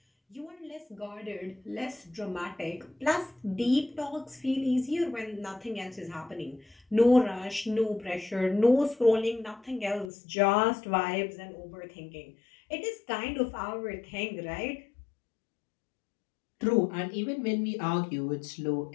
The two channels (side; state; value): right; drops out; at 10.1 s